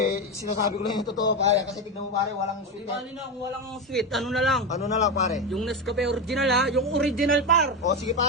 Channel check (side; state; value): both; normal; correlation 0.14